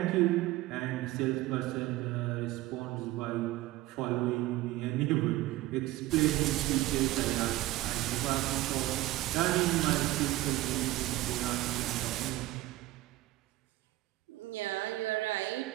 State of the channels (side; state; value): left; quieter; 17.1 dB